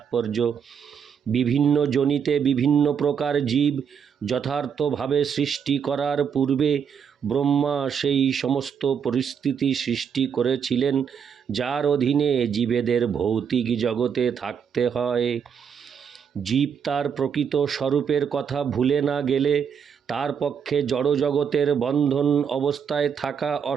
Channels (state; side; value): quieter; left; 7.2 dB